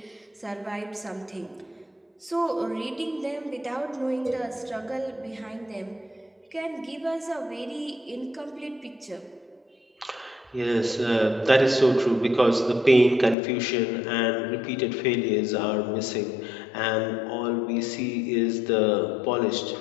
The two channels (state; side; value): drops out; right; at 13.4 s